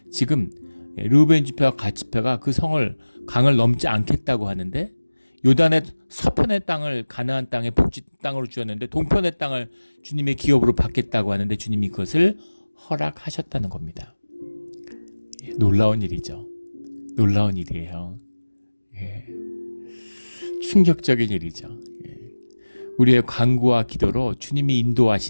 지금 르우벤 지파와 갓 지파가 그 강을 넘지 않겠다고 하는데 요단의 서편의 땅을 가나안 땅의 복지 땅으로 주었는데 동편의 땅을 주님의 기업으로 받겠다고 하는데 주님이 그것을 허락하셨다는 겁니다. 놀라운 일이죠. 놀라운 일이에요. 충격적인 일이죠. 우리의 간구와 기도로 주님이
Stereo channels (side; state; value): both; inverted; correlation -1.00